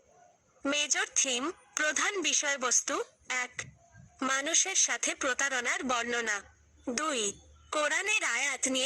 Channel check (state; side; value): identical; both; correlation 1.00